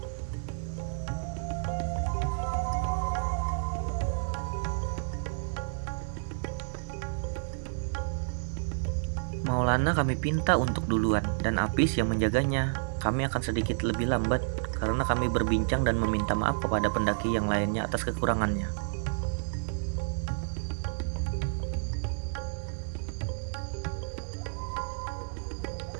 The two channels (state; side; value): silent; left; digital silence